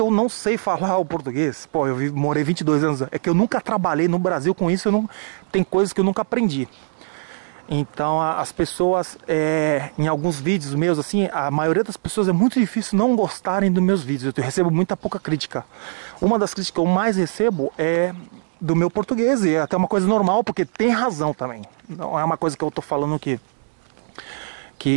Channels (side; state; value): left; silent; digital silence